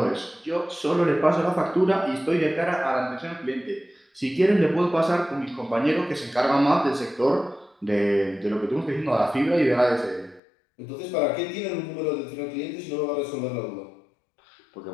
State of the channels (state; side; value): drops out; right; at 10.4 s